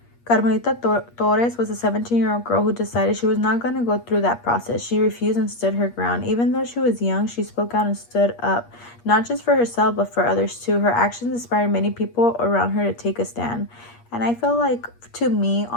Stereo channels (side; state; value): right; late; 8.5 ms